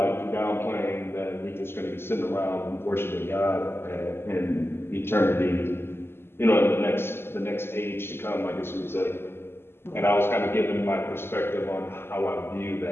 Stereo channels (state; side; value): late; right; 0.11 ms